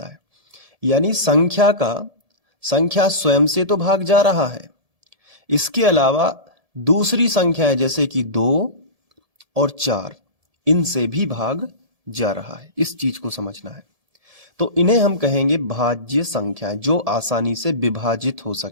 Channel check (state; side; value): late; left; 1.7 ms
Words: है। यानी संख्या स्वयं से तो भाग जा रहा है, इसके अलावा दूसरी संख्याएं जैसे कि 2 और 4 इनसे भी भाग जा रहा है। इस चीज को समझना है। तो इन्हें हम कहेंगे भाज्य संख्याएं जो आसानी से विभाजित हो